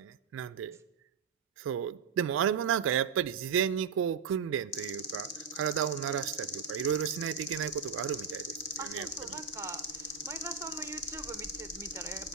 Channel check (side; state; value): left; quieter; 6.0 dB